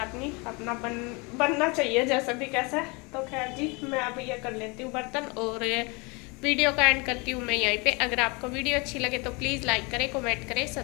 नहीं, अपना बनना चाहिए जैसे भी कैसे। तो खैर जी मैं अब ये कर लेती हूँ बर्तन और वीडियो का एंड करती हूँ मैं यहीं पे। अगर आपको वीडियो अच्छी लगे तो प्लीज़ लाइक करें, कमेंट करें,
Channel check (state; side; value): quieter; right; 28.8 dB